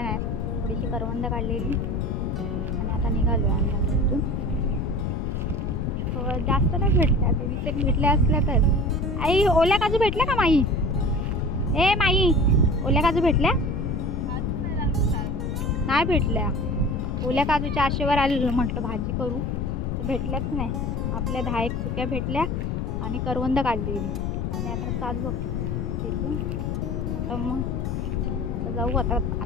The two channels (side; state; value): left; noise; rumble, 1 dB below the sound